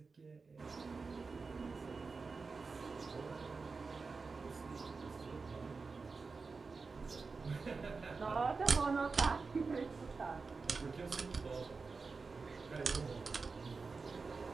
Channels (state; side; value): quieter; left; 4.4 dB